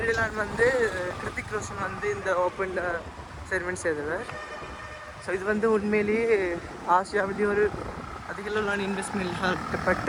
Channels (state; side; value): identical; both; correlation 1.00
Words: வந்து கிருத்திக் ரோஷன் வந்து இந்த ஓப்பன் செரிமனி செய்தவர். ஸோ இது வந்து உண்மையிலேயே ஆசியாவிலேயே ஒரு அதிக அளவிலான இன்வெஸ்ட்மெண்ட்